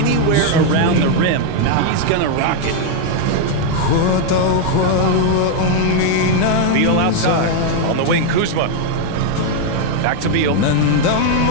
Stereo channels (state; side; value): different; both; correlation 0.00